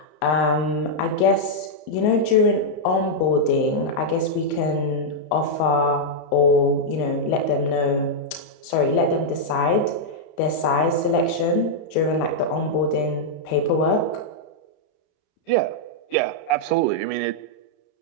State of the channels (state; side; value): late; right; 33 ms